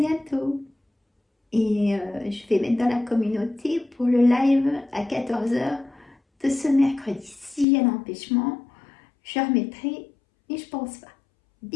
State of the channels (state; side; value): drops out; right; at 7.7 s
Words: Et je vais mettre dans la communauté pour le live à 14 h de ce mercredi. Si j'ai un empêchement, je remettrai, mais je pense pas.